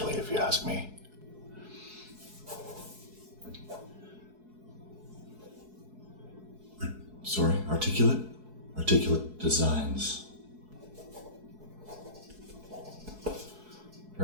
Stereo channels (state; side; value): late; left; 4.7 ms